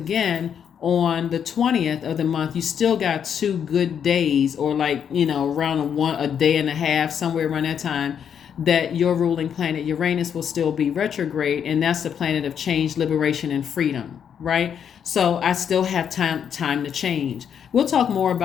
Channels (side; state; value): right; quieter; 8.1 dB